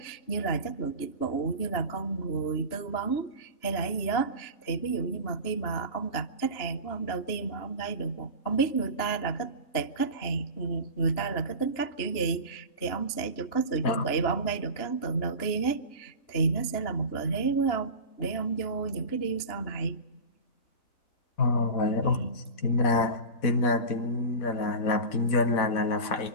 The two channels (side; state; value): right; late; 3.0 ms